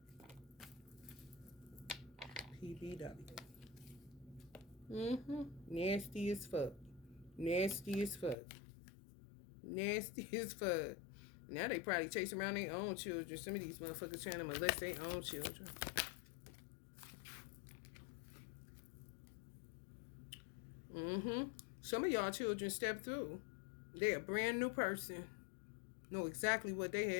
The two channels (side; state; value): right; drops out; at 8.3 s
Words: PBW. Nasty as fuck. Nasty as fuck. Nasty as fuck. Now they probably chase around their own children. Some of these motherfuckers trying to molest their own children. Mm-hmm. Some of y'all children step through. They're a brand new person. Know exactly what they